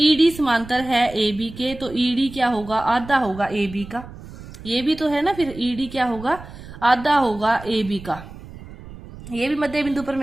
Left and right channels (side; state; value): right; noise; rumble, 16 dB below the sound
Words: समांतर है ए बी के, तो ईडी क्या होगा, आधा होगा ए बी का। ये भी तो है ना, फिर ईडी क्या होगा, आधा होगा ए बी का। ये भी मध्य बिंदु